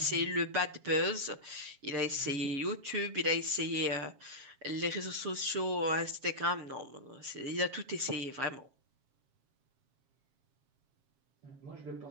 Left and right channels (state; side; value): late; left; 7.3 ms